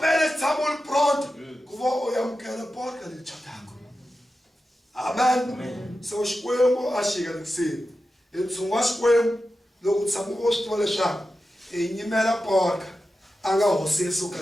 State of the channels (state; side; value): normal; both; correlation 0.92